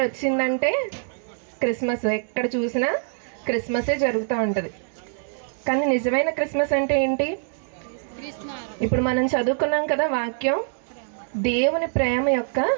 వచ్చిందంటే క్రిస్మస్, ఎక్కడ చూసినా క్రిస్మసే జరుగుతూ ఉంటుంది. కానీ నిజమైన క్రిస్మస్ అంటే ఏంటి? ఇప్పుడు మనం చదువుకున్నాం కదా వాక్యం, దేవుని ప్రేమ యొక్క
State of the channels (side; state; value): left; silent; digital silence